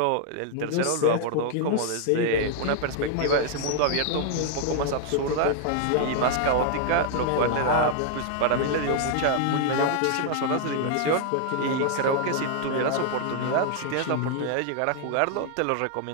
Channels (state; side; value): different; both; correlation 0.00